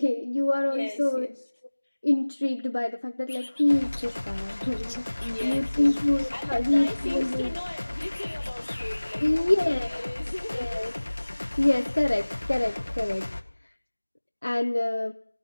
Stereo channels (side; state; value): both; inverted; correlation -1.00